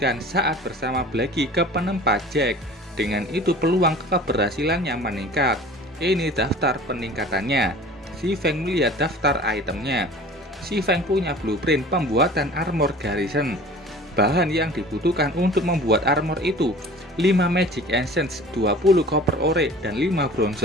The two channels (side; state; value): both; normal; correlation 0.43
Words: saat bersama Blackie ke penempa Jack. Dengan itu peluang keberhasilannya meningkat. Ini daftar peningkatannya. Si Feng melihat daftar itemnya. Si Feng punya blueprint pembuatan armor garrison. Bahan yang dibutuhkan untuk membuat armor itu 5 magic essence, 20 copper ore, dan 5